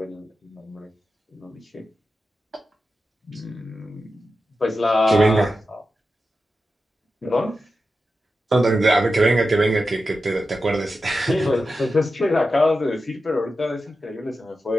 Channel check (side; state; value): both; normal; correlation 0.91